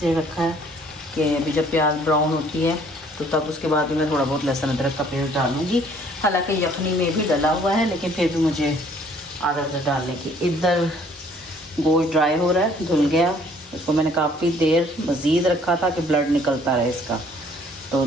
रखा है कि अभी जब प्याज ब्राउन होती है तो तब उसके बाद मैं थोड़ा बहुत लहसुन अदरक का पेस्ट डालूँगी। हालांकि यखनी में भी डला हुआ है, लेकिन फिर भी मुझे आदत है डालने की। इधर गोश्त ड्राई हो रहा है, धुल गया, इसको मैंने काफ़ी देर मज़ीद रखा था कि ब्लड निकलता रहे इसका, तो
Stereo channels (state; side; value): normal; both; correlation 0.59